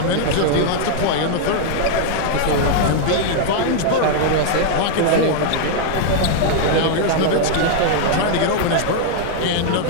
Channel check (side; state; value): both; different; correlation 0.00